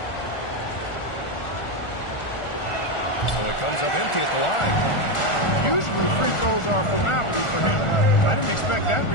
So it comes up empty at the line. Usually free throws are a formality for him. I didn't expect that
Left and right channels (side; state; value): right; late; 1.4 ms